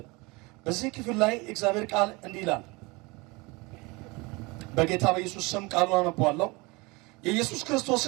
በዚህ ክፍል ላይ የእግዚአብሔር ቃል እንዲህ ይላል። በጌታ በኢየሱስ ስም ቃሉን አነባለሁ። የኢየሱስ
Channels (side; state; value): left; quieter; 25.4 dB